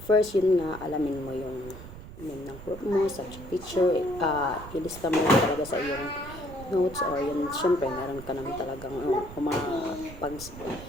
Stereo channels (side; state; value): right; noise; rumble, 14 dB below the sound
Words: First, yun nga, alamin mo yung name ng group mo, subject teacher, ilista mo talaga sa iyong notes or yun, syempre, meron ka naman talagang pag